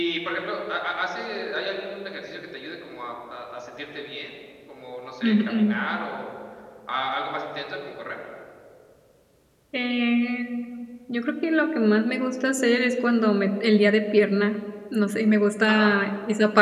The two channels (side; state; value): both; identical; correlation 1.00